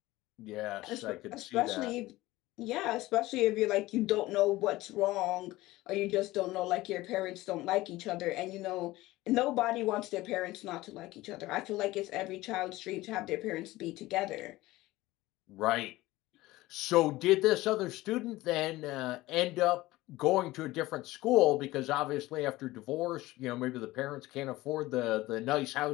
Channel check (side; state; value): right; quieter; 18.3 dB